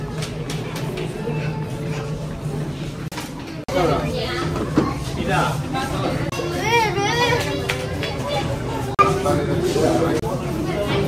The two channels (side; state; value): both; identical; correlation 1.00